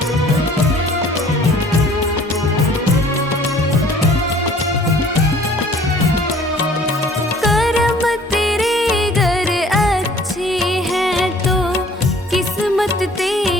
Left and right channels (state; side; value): normal; both; correlation 0.53